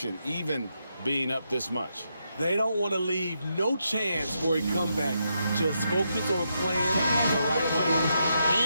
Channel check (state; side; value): inverted; both; correlation -0.82